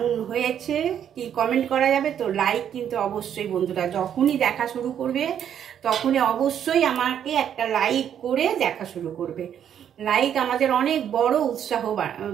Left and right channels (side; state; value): left; quieter; 9.3 dB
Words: হয়েছে, কি কমেন্ট করা যাবে তো? লাইক কিন্তু অবশ্যই বন্ধুরা, যখনই দেখা শুরু করবে তখনই অবশ্যই আমাকে একটা লাইক করে দেখা শুরু করবে। লাইক আমাদের অনেক বড় উৎসাহ